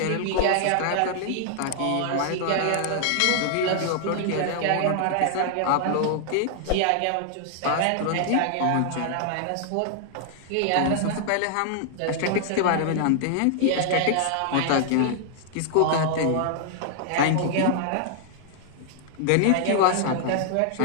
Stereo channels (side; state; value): both; different; correlation 0.00